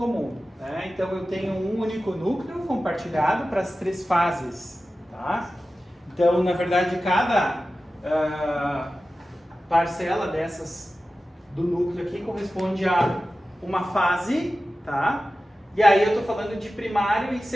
Né? Então, eu tenho um único núcleo compartilhado para as três fases. Tá? Então, na verdade, cada parcela dessas do núcleo aqui corresponde a uma fase, tá? E aí eu estou falando de primário e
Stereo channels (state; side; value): normal; both; correlation 0.94